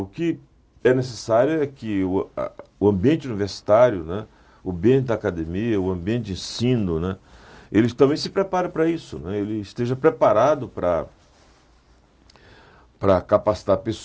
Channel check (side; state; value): both; identical; correlation 1.00